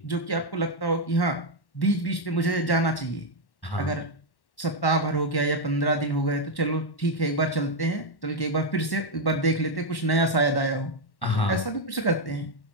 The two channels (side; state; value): right; late; 1.1 ms